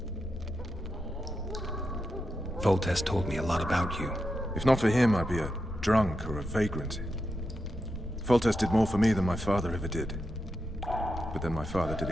Foltest told me a lot about you. If not for him, I'd be a drunk or a vagrant. Foltest did more for me than my father ever did. But then my father did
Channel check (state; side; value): normal; both; correlation 0.87